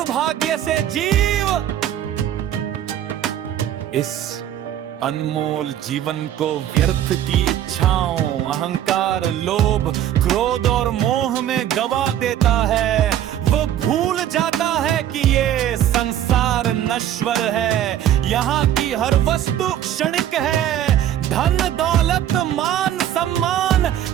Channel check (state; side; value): quieter; left; 11.2 dB